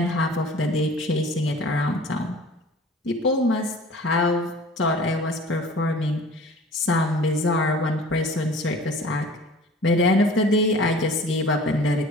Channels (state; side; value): normal; both; correlation 0.45